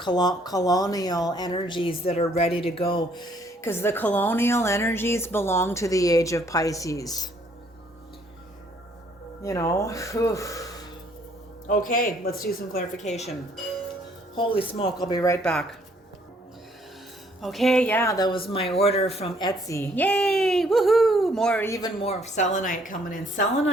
energies that are ready to go. Because the colonial energies belong to the age of Pisces. You know, whew. Okay, let's do some clarification. Holy smoke, I'll be right back. Okay, yeah, that was my order from Etsy. Yay! Woohoo! Even more selenite coming in.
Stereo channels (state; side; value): normal; both; correlation 0.64